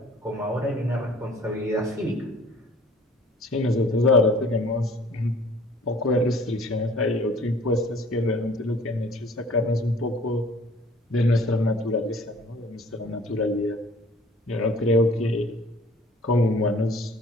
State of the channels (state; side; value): normal; both; correlation 0.52